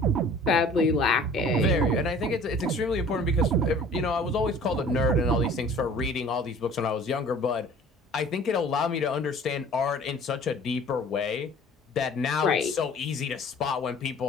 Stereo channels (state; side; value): normal; both; correlation 0.48